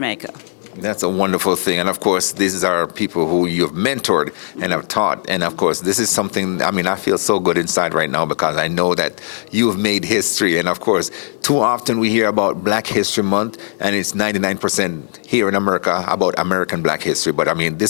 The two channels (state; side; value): silent; right; digital silence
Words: That's a wonderful thing. And of course, these are people who you've mentored and have taught. And of course, this is something, I mean, I feel so good inside right now because I know that you have made history. And of course, too often we hear about Black History Month, and it's 99% here in America about American Black history. But I mean,